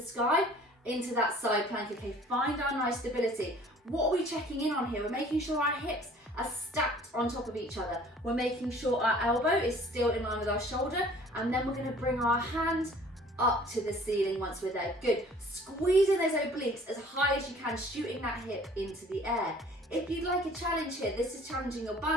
sky, into that side plank. Okay, find our nice stability. What are we checking in on here? We're making sure our hips are stacked on top of each other. We're making sure our elbow is still in line with our shoulder, and then we're going to bring our hand up to the ceiling once we're there. Good. Squeezing those obliques as high as you can, shooting that hip into the air. If you'd like a challenge here, this is challenging your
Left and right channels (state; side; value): normal; both; correlation 0.52